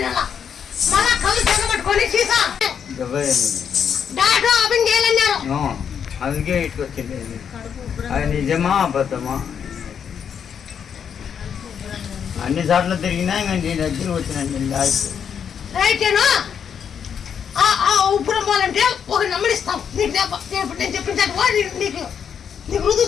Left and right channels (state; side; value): quieter; right; 7.7 dB